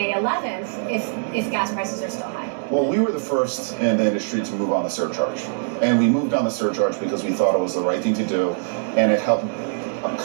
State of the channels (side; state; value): left; silent; digital silence